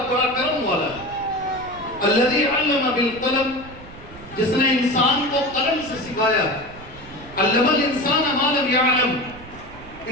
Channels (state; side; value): noise; right; rumble, 18 dB below the sound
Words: بڑا کرم والا ہے۔ الذی علم بالقلم، جس نے انسان کو قلم سے سکھایا۔ علم الانسان ما لم یعلم،